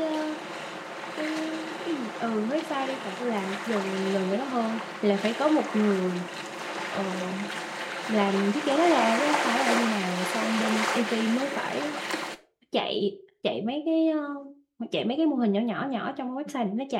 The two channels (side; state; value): both; identical; correlation 1.00